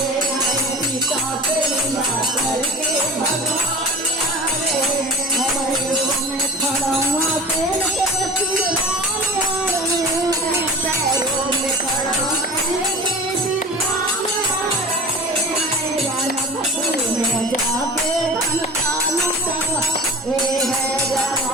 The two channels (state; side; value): normal; both; correlation 0.37